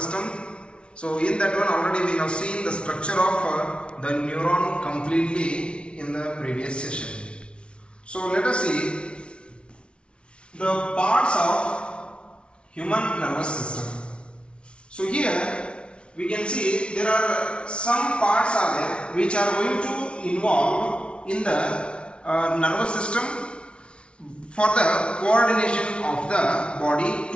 So in that one already we have seen the structure of the neuron completely in the previous session. So let us see the parts of human nervous system. So here we can see there are some parts are there which are going to involve in the nervous system for the coordination of the body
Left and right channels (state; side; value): late; right; 0.058 ms